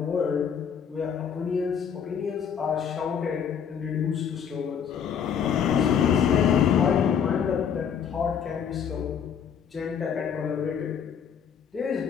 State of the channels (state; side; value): quieter; right; 7.7 dB